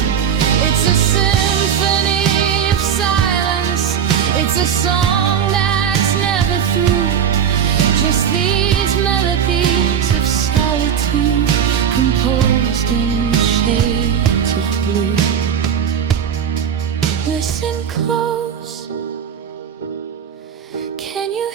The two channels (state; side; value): quieter; left; 8.2 dB